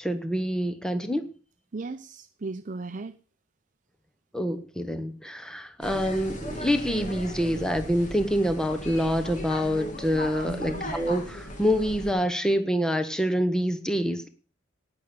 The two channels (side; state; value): both; normal; correlation 0.85